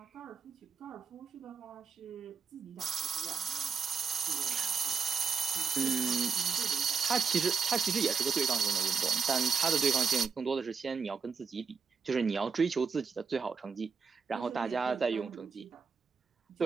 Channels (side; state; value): left; quieter; 5.6 dB